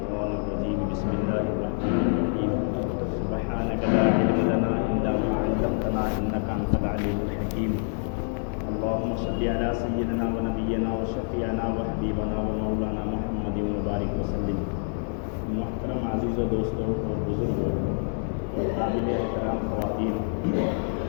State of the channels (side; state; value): right; silent; 60 dB below the other